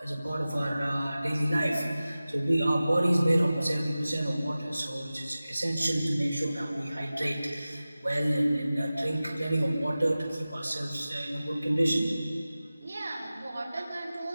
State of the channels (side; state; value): both; inverted; correlation -0.96